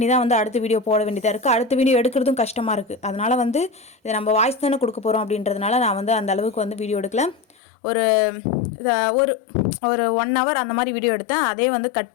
தான் வந்து அடுத்த வீடியோ போட வேண்டியதாக இருக்குது. அடுத்த வீடியோ எடுக்கிறதும் கஷ்டமாக இருக்குது. அதனால் வந்து இதை நம்ம வாய்ஸ் தானே கொடுக்க போகிறோம் அப்படின்றதுனால நான் வந்து அந்த அளவுக்கு வந்து வீடியோ எடுக்கலை. ஒரு ஒரு 1 hour அந்த மாதிரி வீடியோ எடுத்தேன். அதே வந்து கட்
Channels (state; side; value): drops out; right; at 7.6 s